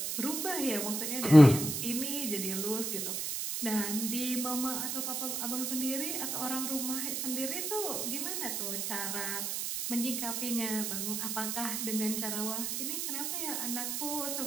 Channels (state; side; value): noise; right; hiss, 2 dB below the sound